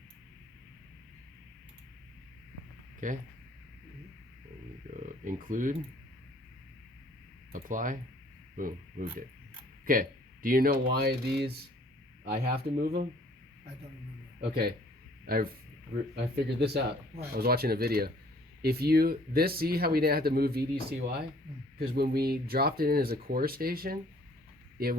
Okay. And you go include. Apply. Boom. Moved it. Okay. Do you know why these? I have to move them. I don't remember. Okay. I figured this out. Why? I was watching a video. See how we didn't have to move VDCY? Because when we dropped it in as a core station, it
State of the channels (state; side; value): normal; both; correlation 0.58